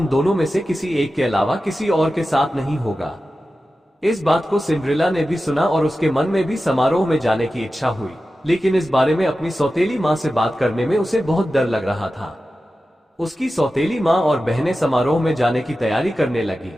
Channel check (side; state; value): both; normal; correlation 0.93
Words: दोनों में से किसी एक के अलावा किसी और के साथ नहीं होगा। इस बात को सिंड्रेला ने भी सुना और उसके मन में भी समारोह में जाने की इच्छा हुई, लेकिन इस बारे में अपनी सौतेली माँ से बात करने में उसे बहुत डर लग रहा था। उसकी सौतेली माँ और बहनें समारोह में जाने की तैयारी करने लगी।